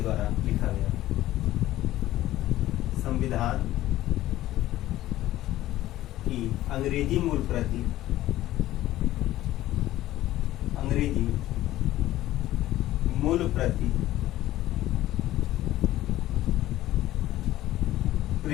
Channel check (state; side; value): quieter; right; 14.8 dB